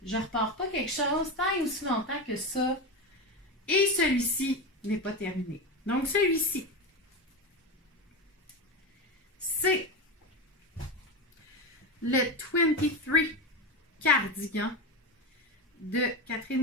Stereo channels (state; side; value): normal; both; correlation 0.18